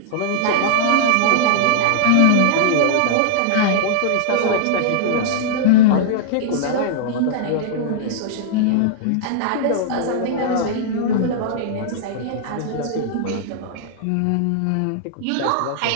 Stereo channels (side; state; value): both; different; correlation -0.01